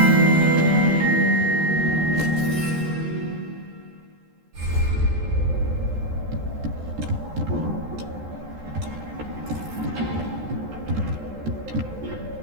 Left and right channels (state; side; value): late; left; 14 ms